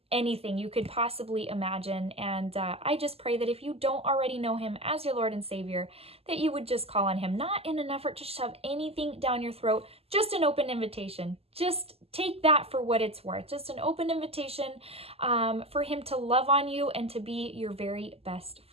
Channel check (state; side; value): late; left; 0.29 ms